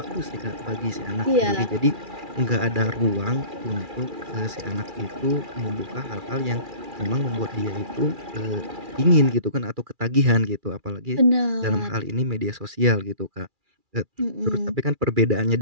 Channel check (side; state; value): left; late; 2.4 ms